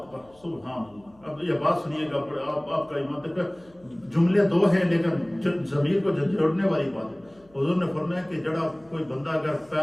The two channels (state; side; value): noise; left; hum, 29 dB below the sound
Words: سبحان اللہ۔ اب یہ بات سنیے گا، آپ کا ایمان تک جملے دو ہیں لیکن ضمیر کو جوڑنے والی بات ہے۔ حضور نے فرمایا کہ جڑا کوئی بندہ اگر